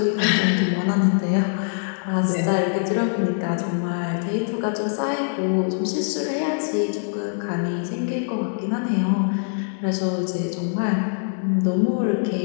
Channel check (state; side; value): silent; right; digital silence